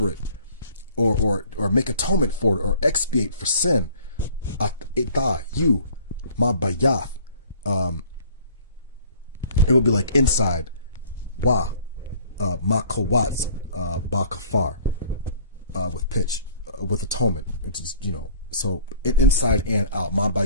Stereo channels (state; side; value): inverted; both; correlation -0.52